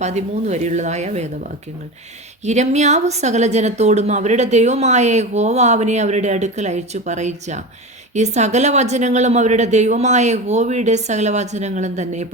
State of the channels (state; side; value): normal; both; correlation 0.26